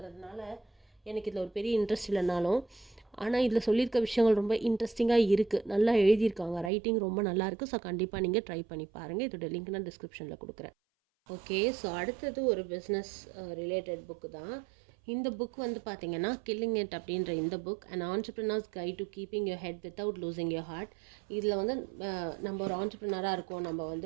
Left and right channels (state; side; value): drops out; left; at 6.7 s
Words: எனக்கு இதில் ஒரு பெரிய இன்ட்ரெஸ்ட் இல்லைனாலும், ஆனால் இதில் சொல்லியிருக்க விஷயங்கள் ரொம்ப இன்ட்ரெஸ்டிங்காக இருக்குது. நல்லா எழுதியிருக்காங்க, ரைட்டிங் ரொம்ப நல்லாயிருக்கு. ஸோ கண்டிப்பாக நீங்கள் ட்ரை பண்ணி பாருங்கள். இதோட லிங்க் நான் டிஸ்கிரிப்ஷனில் கொடுக்குறேன். ஓகே, ஸோ அடுத்தது ஒரு பிஸ்னஸ் ரிலேட்டட் புக்கு தான். இந்த புக் வந்து பார்த்தீங்கன்னா கில்லிங் இட் அப்படின்ற இந்த book, and entrepreneur's guide to keeping your head without losing your heart. இதில் வந்து நம்ம ஒரு ஆண்டர்ப்ரினராக இருக்கோம், நம்ம